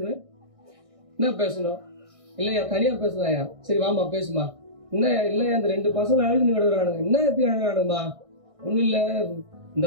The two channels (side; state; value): left; late; 1.6 ms